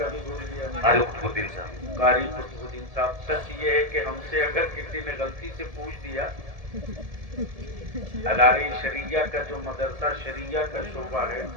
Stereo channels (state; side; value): late; left; 1.7 ms